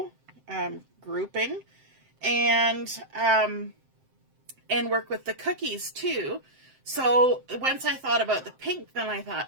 grouping, and work with the cookies too. So once I thought about the pink, then I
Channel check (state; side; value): late; left; 7.7 ms